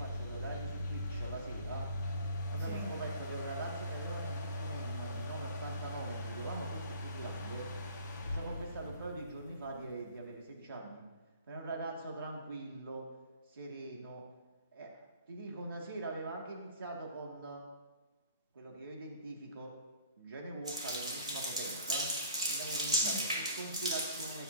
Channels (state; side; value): inverted; both; correlation -0.50